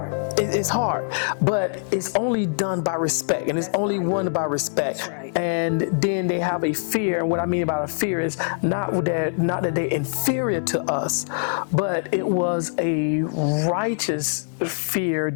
It's hard, but it's only done by respect, and it's only won by respect. That's right. And then they have a fear, and what I mean by a fear is not that they're inferior to us, but it was a righteous fear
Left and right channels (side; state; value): right; silent; digital silence